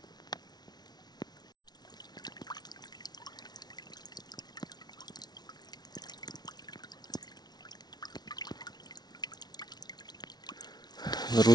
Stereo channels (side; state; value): right; late; 0.19 ms